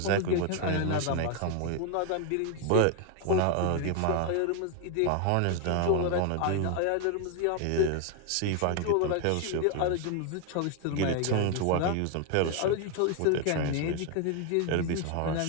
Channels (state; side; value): different; both; correlation 0.01